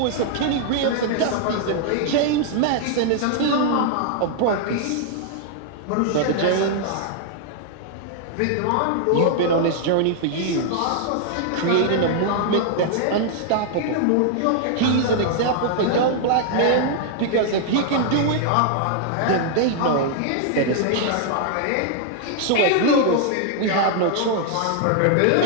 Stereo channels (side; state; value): both; different; correlation -0.01